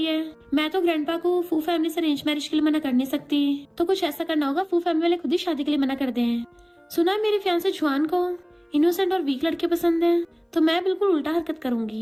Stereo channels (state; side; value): identical; both; correlation 1.00